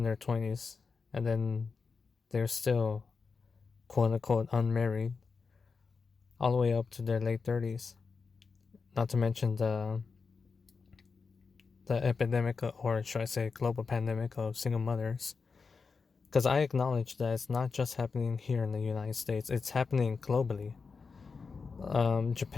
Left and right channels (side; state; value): right; quieter; 4.9 dB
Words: their 20s and then they're still quote unquote unmarried all the way up to their late 30s. Not to mention the epidemic, or should I say global pandemic of single mothers. Because I acknowledge that it's not just happening here in the United States, it's happening globally.